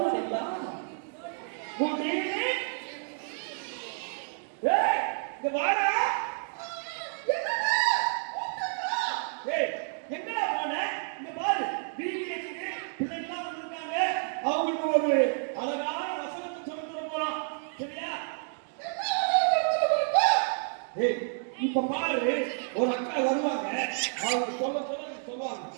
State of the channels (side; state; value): left; silent; 58 dB below the other